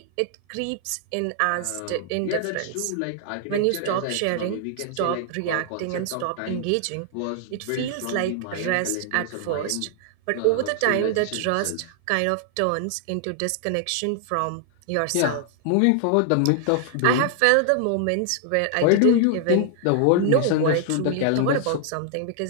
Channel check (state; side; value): different; both; correlation 0.00